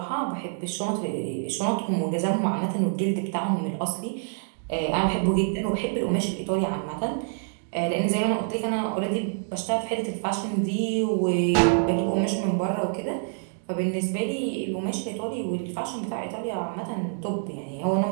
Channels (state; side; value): silent; left; 60 dB below the other